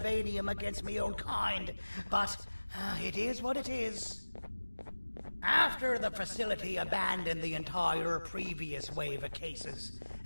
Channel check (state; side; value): inverted; both; correlation -1.00